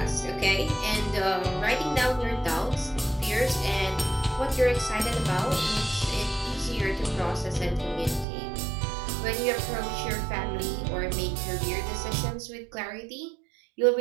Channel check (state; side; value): drops out; left; at 8.2 s